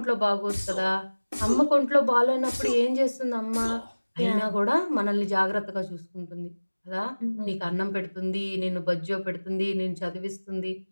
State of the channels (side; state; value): both; inverted; correlation -1.00